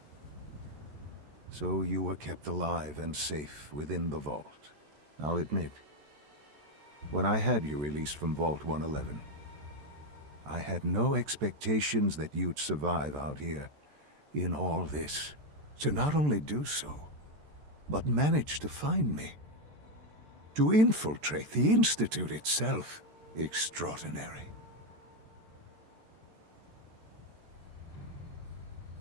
So you were kept alive and safe within the vault. I'll admit, when I had you released from Vault 111, I had no expectations that you'd survive out here in all this. To not only do so, but manage to find me. To infiltrate the Institute itself. Extraordinary.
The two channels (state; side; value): late; left; 14 ms